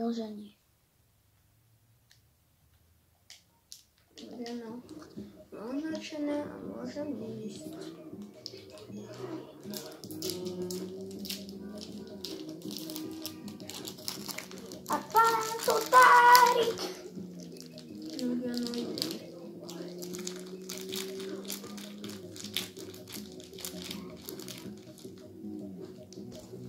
že nie. No, označené a môžem ísť. A pán Totárik! No, ja no idem.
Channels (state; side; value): identical; both; correlation 1.00